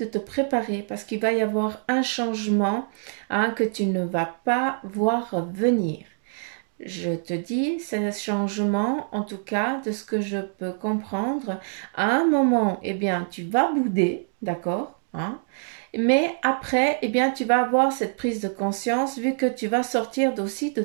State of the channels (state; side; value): silent; left; digital silence